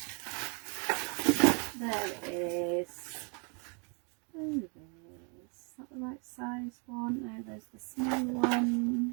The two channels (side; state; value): left; quieter; 36.1 dB